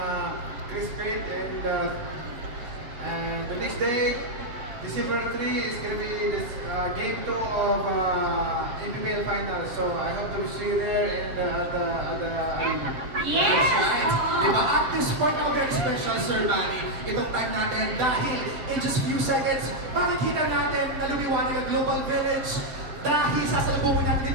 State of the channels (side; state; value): left; late; 7.9 ms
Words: Chris Pate, and the next day, December 3 is going to be this game 2 of NBBL Finals. So I hope to see you there and at the arena. Yes! Right? Diba? At this point, now very special, Sir Manny, itong time natin dahil in just few seconds, makikita natin na lumiwanag ang Global Village dahil sasalubungin natin